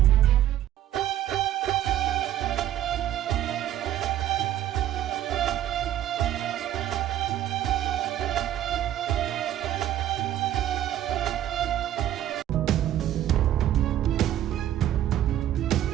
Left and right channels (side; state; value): left; quieter; 12.2 dB